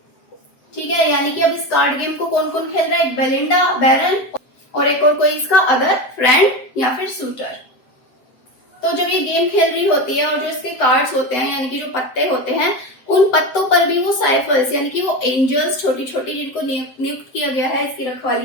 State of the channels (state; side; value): late; right; 7.9 ms